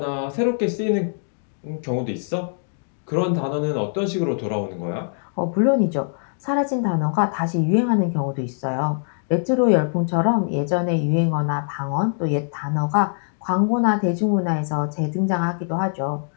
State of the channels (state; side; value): silent; right; digital silence